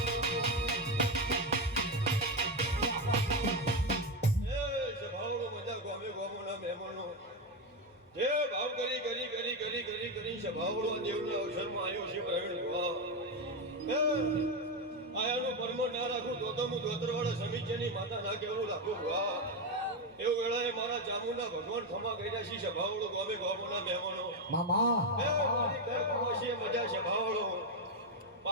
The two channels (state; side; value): normal; both; correlation 0.09